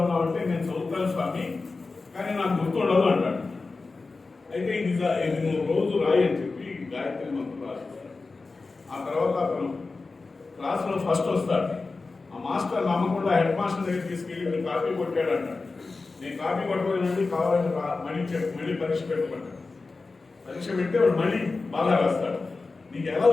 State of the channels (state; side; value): quieter; right; 3.9 dB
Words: ఉన్నావు అంటే, నేను చదువుతాను స్వామి కానీ నాకు గుర్తుండదు అంటాడు. అయితే ఇది నువ్వు రోజు రాయి అని చెప్పి గాయత్రి మంత్రం రాస్తాడు. ఆ తర్వాత అతను క్లాసులో ఫస్ట్ వస్తాడు. ఆ మాస్టర్ నమ్మకుండా హెడ్ మాస్టర్ దగ్గర తీసుకెళ్ళి మీరు కాపీ కొట్టాడు అంటాడు. నేను కాపీ కొట్టలేనండి, కావాలని మళ్ళీ పరీక్ష పెట్టుకుంటాడు. పరీక్ష పెడితే వాడు మళ్ళీ బాగా రాస్తాడు. నీకు ఎలా